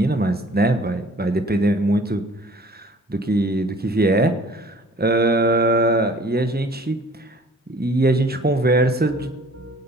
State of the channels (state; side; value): normal; both; correlation 0.51